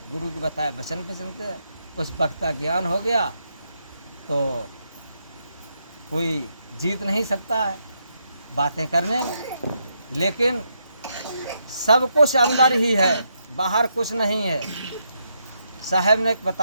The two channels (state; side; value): inverted; both; correlation -0.80